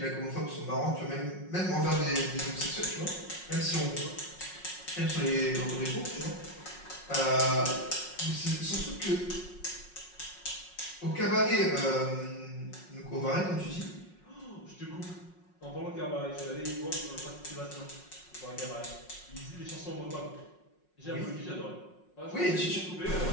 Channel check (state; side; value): late; right; 5.5 ms